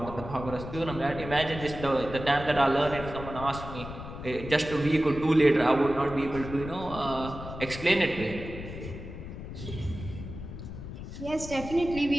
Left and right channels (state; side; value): noise; left; rumble, 10 dB below the sound